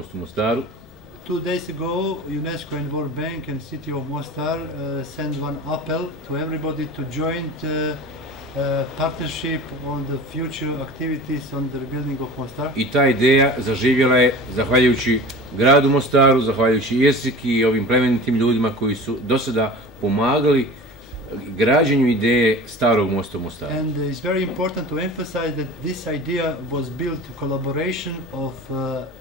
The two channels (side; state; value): both; normal; correlation 0.36